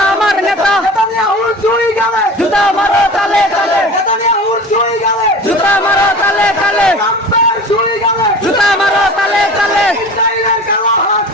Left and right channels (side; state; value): both; normal; correlation 0.37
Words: আমার নেতা জুতা মারো তালে তালে জুতা মারো তালে তালে জুতা মারো তালে তালে